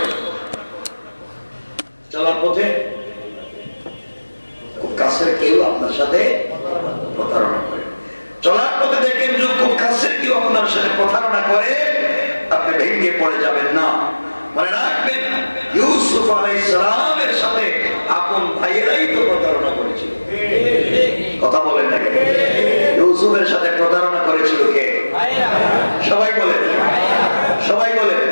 চলার পথে খুব কাছের কেউ আপনার সাথে প্রতারণা করে, চলার পথে দেখেন যে খুব কাছের কেউ আপনার সাথে প্রতারণা করে, আপনি ভেঙে পড়ে যাবেন না। মনে রাখবেন ইউসুফ আলাইহিস সালামের সাথে আপন ভাইয়েরাই তো প্রতারণা করেছিল। কথা বলেন না? ইউসুফের সাথে প্রতারণা করেছিল কে? সবাই বলেন, সবাই বলেন।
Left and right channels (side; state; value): both; inverted; correlation -1.00